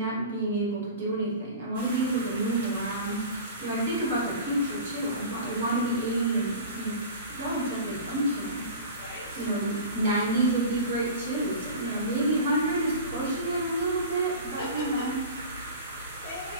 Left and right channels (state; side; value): inverted; both; correlation -0.34